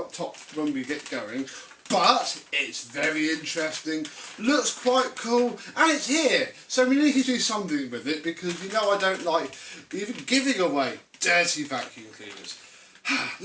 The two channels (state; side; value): identical; both; correlation 1.00